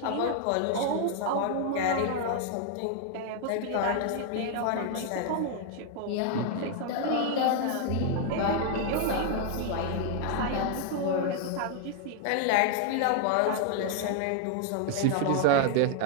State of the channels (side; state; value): both; different; correlation 0.00